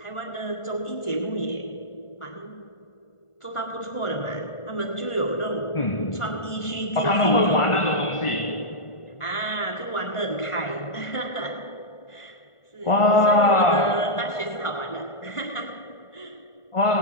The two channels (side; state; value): right; late; 1.5 ms